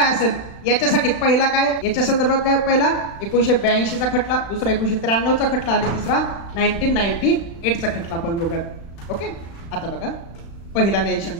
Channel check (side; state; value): right; late; 35 ms